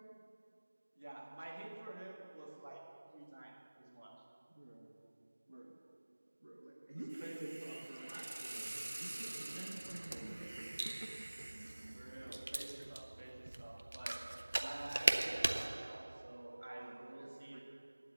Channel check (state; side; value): inverted; both; correlation -1.00